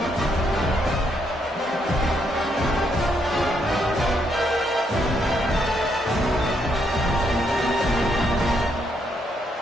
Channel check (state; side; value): normal; both; correlation 0.75